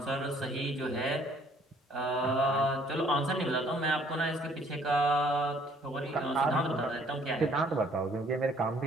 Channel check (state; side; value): normal; both; correlation 0.60